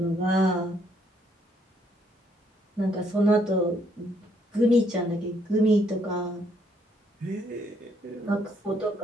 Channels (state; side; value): normal; both; correlation 0.70